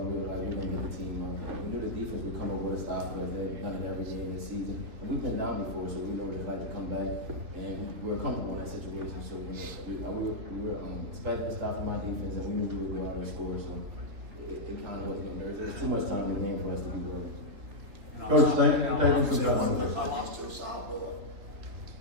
we were like, we're going to get the team out. We knew the defense would come up with a stop for us. They've done it every game this season. And we've been down before, so we know what it's like to come back. And we were comfortable in that situation. So we were expecting a stop from my defense, and we knew we would go out and score. So it kind of wasn't getting nervous. There was too much time in the game for us to be worried. Coach, thank you for I that. lost to a sophomore.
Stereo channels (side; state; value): left; late; 3.2 ms